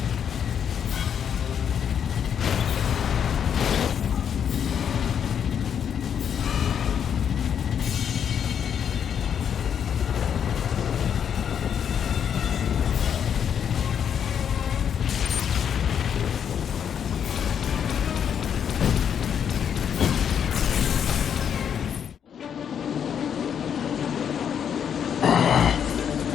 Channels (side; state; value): right; quieter; 8.2 dB